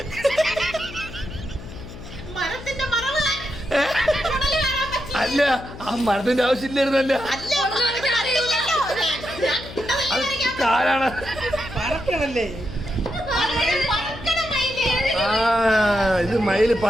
മരത്തിന്റെ മറവ് അല്ല ആ മരത്തിന്റെ ആവശ്യമില്ലായിരുന്നല്ല അത് കാലാണ് പറക്കണല്ലേ ആ ഇത് മയില്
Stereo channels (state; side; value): noise; left; hum, 14 dB below the sound